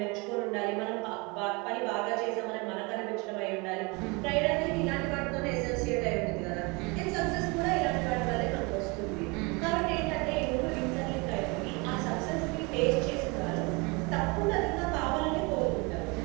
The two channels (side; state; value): left; quieter; 28.1 dB